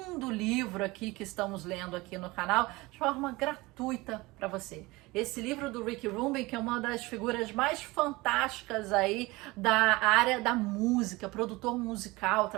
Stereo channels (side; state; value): left; quieter; 22.0 dB